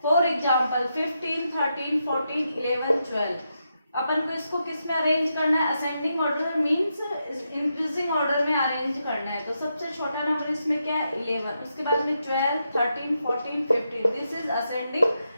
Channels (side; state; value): both; inverted; correlation -0.84